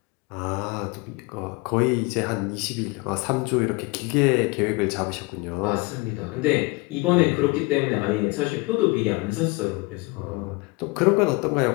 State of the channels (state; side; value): quieter; right; 26.0 dB